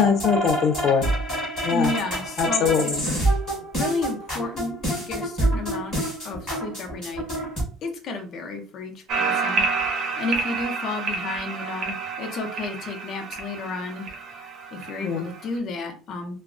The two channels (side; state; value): both; normal; correlation 0.52